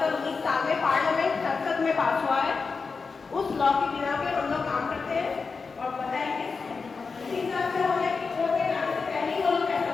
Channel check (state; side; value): quieter; right; 4.8 dB